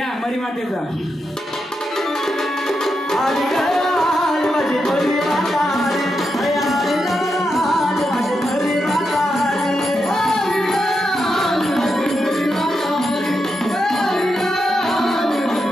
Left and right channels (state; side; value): normal; both; correlation 0.85